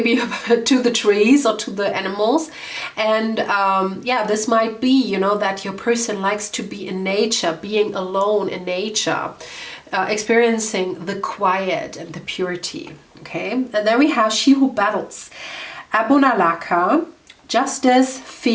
to the trees or to the animals. And this might be, you know, that your person likes to be in nature, being alone in nature, experiencing the quiet and the purity. Okay, and then we have she who battles, Abunalaka, justice,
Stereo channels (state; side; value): identical; both; correlation 1.00